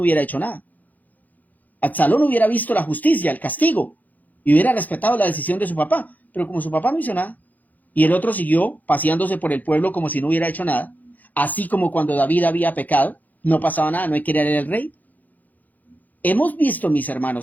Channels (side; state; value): right; late; 0.081 ms